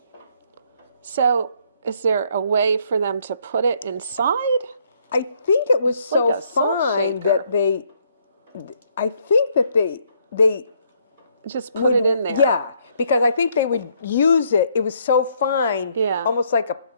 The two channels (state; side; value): inverted; both; correlation -0.69